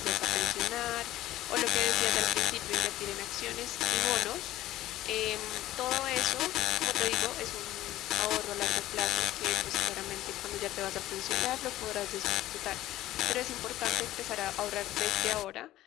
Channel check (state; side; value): quieter; right; 14.8 dB